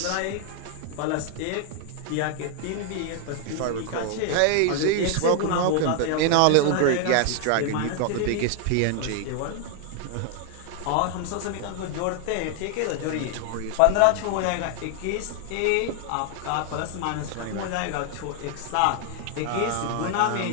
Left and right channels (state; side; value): different; both; correlation 0.00